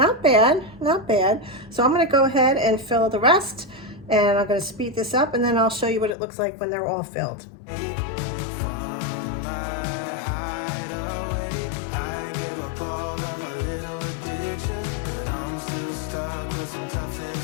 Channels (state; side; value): drops out; right; at 6.2 s